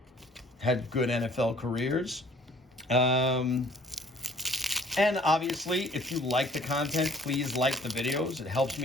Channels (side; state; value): both; normal; correlation 0.55